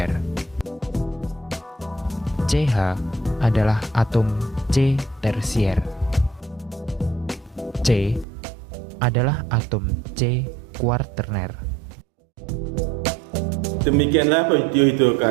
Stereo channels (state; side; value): drops out; left; at 8.2 s